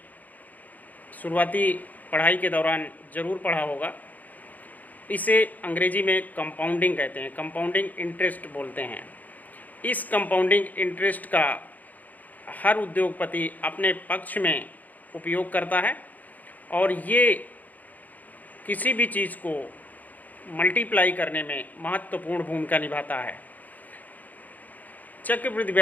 शुरुआती पढ़ाई के दौरान ज़रूर पढ़ा होगा। इसे अंग्रेजी में कंपाउंडिंग कहते हैं, कंपाउंडिंग इंटरेस्ट बोलते हैं। इस कंपाउंडिंग इंटरेस्ट का हर उद्योगपति अपने पक्ष में उपयोग करता है और ये किसी भी चीज़ को मल्टीप्लाई करने में महत्वपूर्ण भूमिका निभाता है। चक्रवृद्धि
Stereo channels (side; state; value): right; late; 0.081 ms